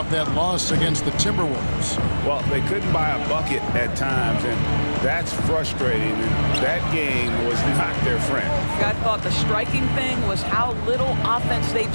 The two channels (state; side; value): inverted; both; correlation -1.00